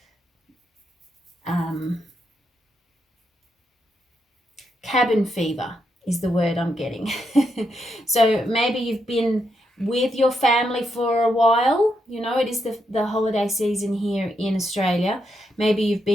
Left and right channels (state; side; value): normal; both; correlation 0.81